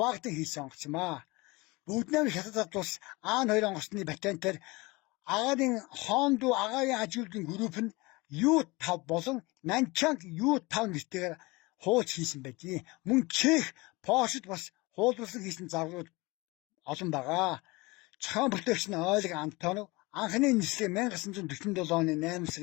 хийсэн онгоц юм аа. Бүгд найрамд хятад улс Аан 2 онгоцны патентаар агарын Хондуу агаарын аж үйлдвэрийн групп нь U5 болон Нанчанг U5 нэртэйгээр хууч хийсэн байдгийг. Мөн Чех, Польшид бас хуулбарлан хийсэн загварууд олон байгаа. Зохион бүтээгч нь Ойлег Антонов. Анхны нислэг 1947 оны 8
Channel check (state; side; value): quieter; right; 23.9 dB